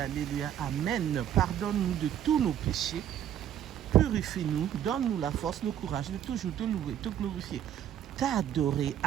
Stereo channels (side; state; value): left; quieter; 10.3 dB